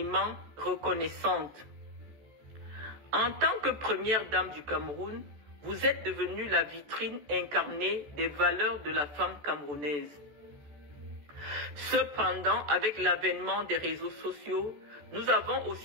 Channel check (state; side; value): late; left; 14 ms